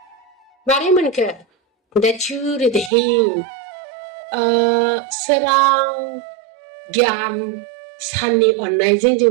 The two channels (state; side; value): drops out; left; at 2.9 s